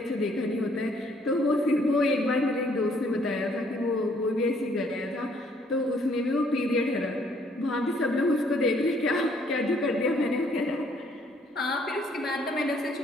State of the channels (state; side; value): normal; both; correlation 0.65